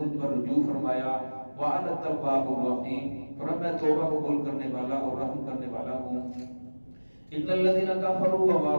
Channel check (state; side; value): inverted; both; correlation -1.00